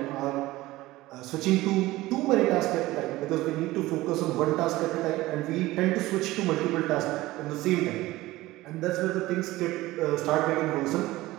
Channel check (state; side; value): quieter; left; 18.0 dB